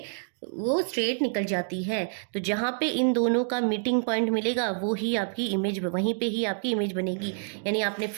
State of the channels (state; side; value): silent; left; digital silence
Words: वो स्ट्रेट निकल जाती है। तो जहाँ पे इन दोनों का मीटिंग पॉइंट मिलेगा वो ही आपकी इमेज, वहीं पे ही आपकी इमेज बनेगी। यानी आपने